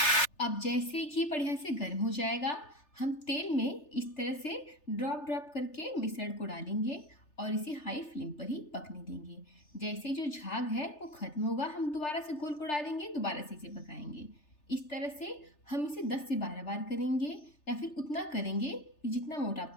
अब जैसे ही घी बढ़िया से गर्म हो जाएगा हम तेल में इस तरह से ड्रॉप करके मिश्रण को डालेंगे और इसे हाई फ्लेम पर ही पकने देंगे। जैसे जो झाग है वो खत्म होगा हम दोबारा से घोल को डालेंगे, दोबारा से इसे पकाएंगे। इस तरह से हम इसे 10 से 12 बार करेंगे या फिर उतना करेंगे कि जितना मोटा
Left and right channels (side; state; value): right; late; 3.3 ms